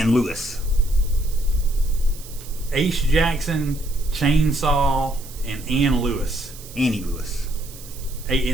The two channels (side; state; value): right; noise; hiss, 17 dB below the sound